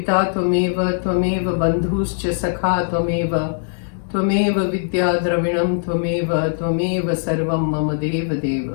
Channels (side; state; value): right; silent; 66 dB below the other